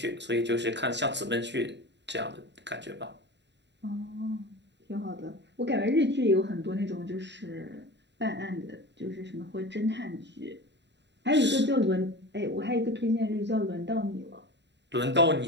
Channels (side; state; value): left; late; 0.51 ms